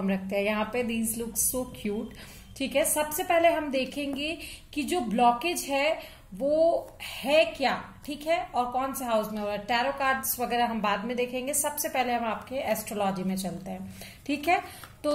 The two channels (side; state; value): both; identical; correlation 1.00